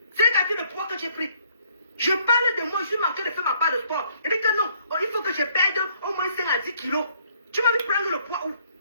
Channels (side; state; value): both; inverted; correlation -0.66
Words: C'est quelqu'un de poids que j'ai pris. Je parle de moi, je suis manqué de faire ma part de sport. Je dis que non, il faut que je perde au moins 5 à 10 kilos. Tu m'as vu prendre le poids où?